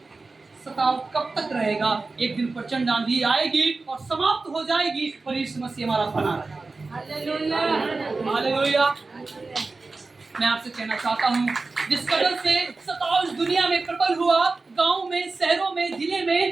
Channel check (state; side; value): quieter; left; 3.7 dB